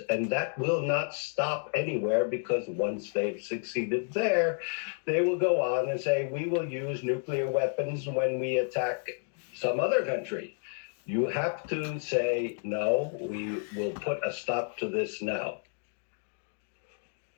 And that will not stop anywhere, because once they've succeeded there, they will go on and say, we will use nuclear weapons when we attack some other country. You have to say, no, we will put a stop to this now.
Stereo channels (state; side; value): silent; right; 56 dB below the other